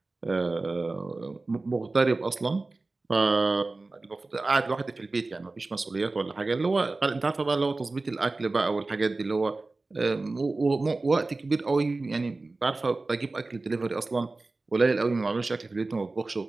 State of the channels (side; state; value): left; quieter; 3.4 dB